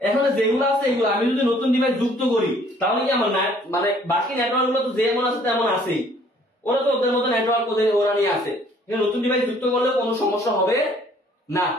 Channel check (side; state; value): both; normal; correlation 0.59